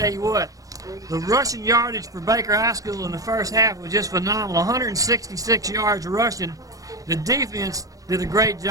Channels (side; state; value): left; late; 0.17 ms